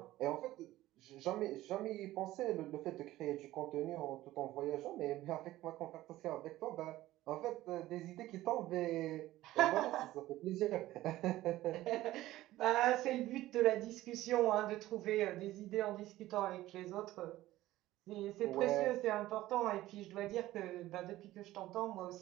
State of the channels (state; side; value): quieter; left; 15.9 dB